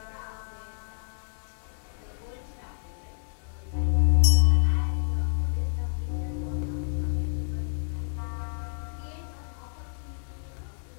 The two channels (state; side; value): silent; right; digital silence